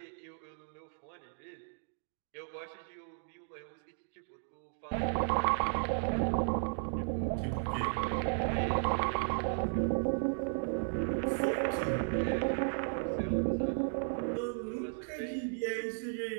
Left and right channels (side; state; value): left; silent; digital silence